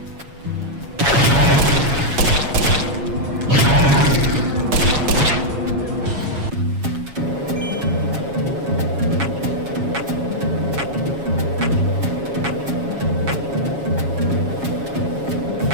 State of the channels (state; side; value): late; left; 7.2 ms